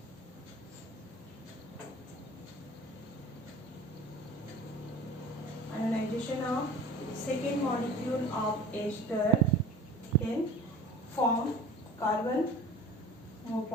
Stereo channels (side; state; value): both; normal; correlation 0.40